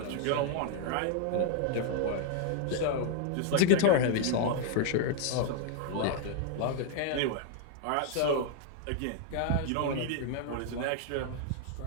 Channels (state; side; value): different; both; correlation 0.00